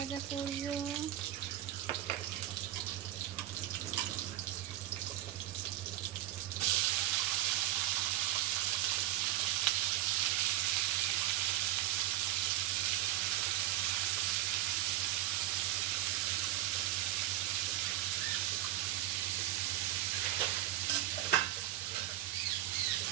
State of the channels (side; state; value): left; quieter; 13.7 dB